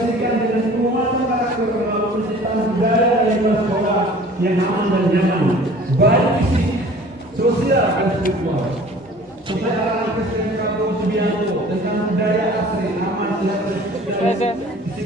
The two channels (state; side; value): normal; both; correlation 0.47